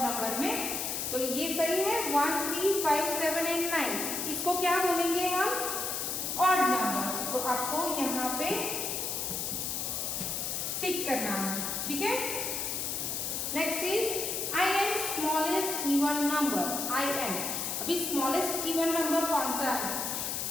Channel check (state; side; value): noise; left; hiss, 2 dB below the sound